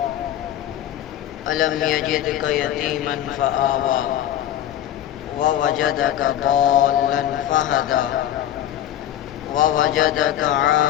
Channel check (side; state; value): right; quieter; 11.9 dB